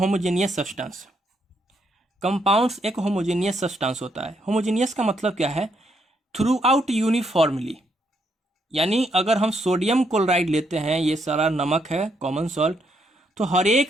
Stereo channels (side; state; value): both; normal; correlation 0.75